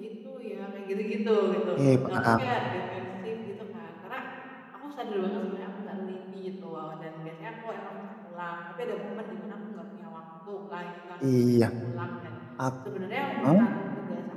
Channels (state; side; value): identical; both; correlation 1.00